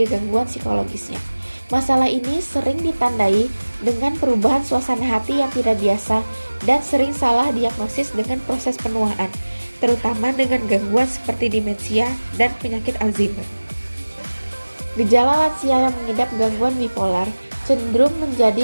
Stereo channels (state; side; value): inverted; both; correlation -1.00